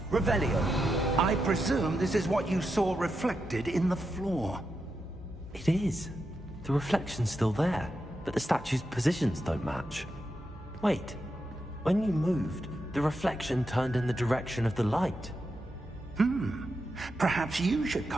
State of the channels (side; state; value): both; normal; correlation 0.86